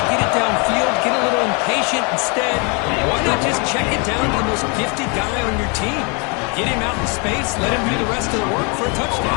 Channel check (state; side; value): quieter; right; 33.3 dB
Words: get it downfield, get a little impatient. Instead, why not just check it down to the most gifted guy on your team? Get him out in space, let him do the rest of the work for a